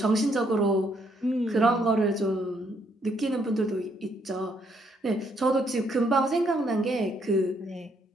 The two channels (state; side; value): normal; both; correlation 0.71